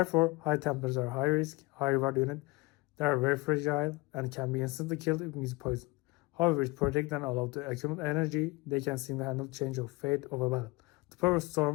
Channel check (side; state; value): right; quieter; 23.7 dB